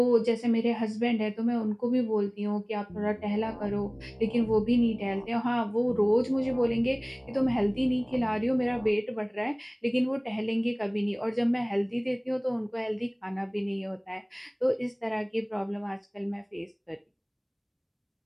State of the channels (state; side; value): identical; both; correlation 1.00